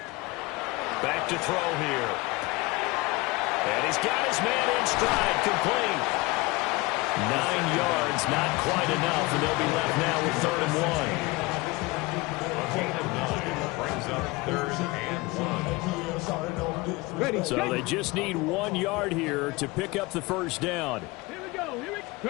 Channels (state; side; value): quieter; right; 22.8 dB